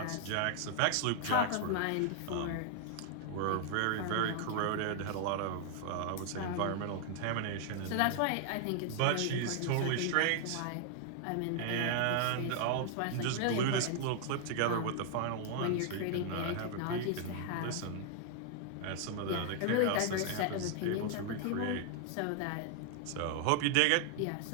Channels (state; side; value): different; both; correlation 0.00